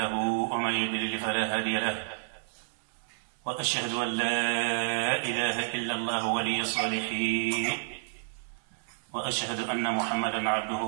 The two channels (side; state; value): left; silent; 58 dB below the other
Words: ومن يضلل فلا هادي له، وأشهد أن لا إله إلا الله ولي الصالحين، وأشهد أن محمدًا عبده